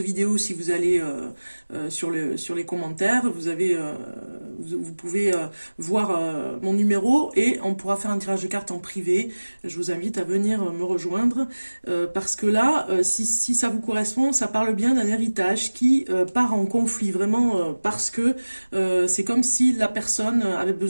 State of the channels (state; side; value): inverted; both; correlation -1.00